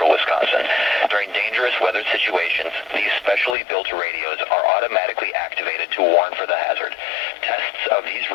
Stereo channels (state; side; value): drops out; right; at 3.6 s